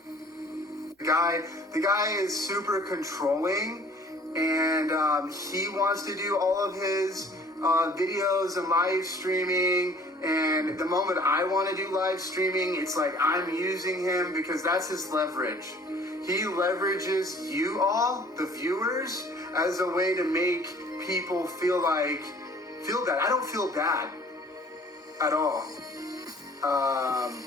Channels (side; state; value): both; normal; correlation 0.53